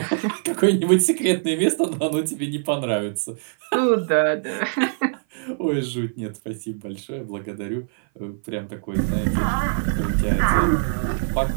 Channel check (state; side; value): silent; left; 58 dB below the other